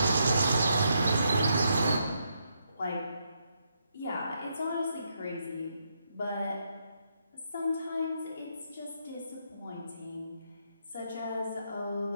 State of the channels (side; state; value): both; inverted; correlation -0.78